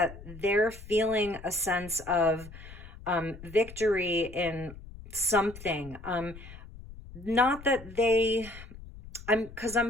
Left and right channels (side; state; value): left; noise; rumble, 16 dB below the sound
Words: they're feeling a sense of victory in something. Not that they, because